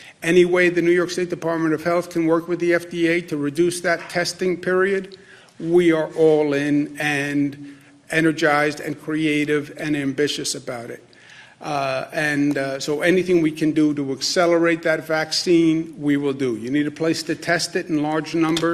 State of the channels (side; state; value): both; identical; correlation 1.00